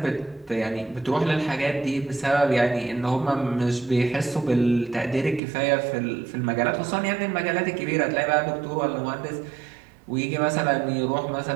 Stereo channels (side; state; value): left; drops out; at 5.4 s